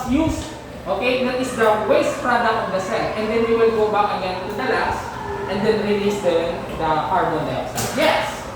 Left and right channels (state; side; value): identical; both; correlation 1.00